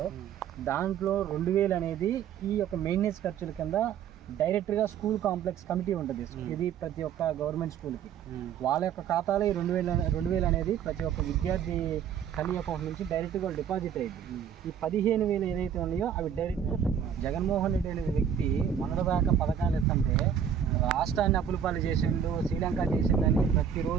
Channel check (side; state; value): left; quieter; 8.4 dB